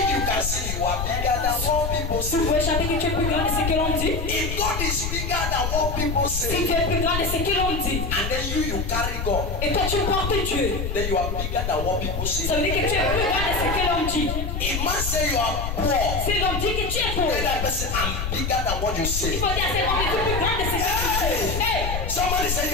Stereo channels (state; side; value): noise; left; rumble, 3 dB below the sound